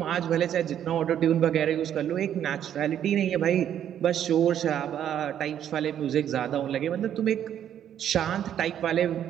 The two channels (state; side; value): quieter; left; 10.1 dB